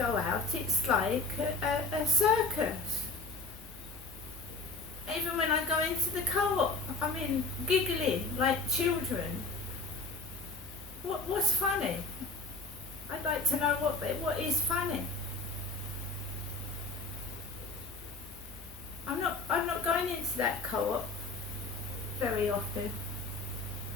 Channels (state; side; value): quieter; right; 3.5 dB